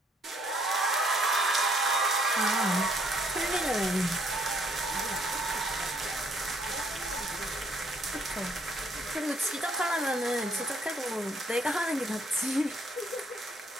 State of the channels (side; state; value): both; normal; correlation 0.67